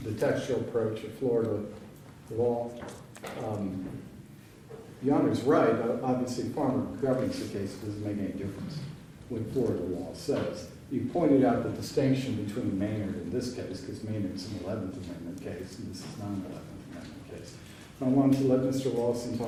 the textual approach of Florida law. Your Honor's right, obviously Farmer governs the case, it doesn't make any difference what Florida law says. You pointed out the distinction between Maynard in this case, because Maynard's an 11th Amendment case, and this is not an 11th Amendment case. I wanted to let Mr. Lawson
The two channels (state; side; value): identical; both; correlation 1.00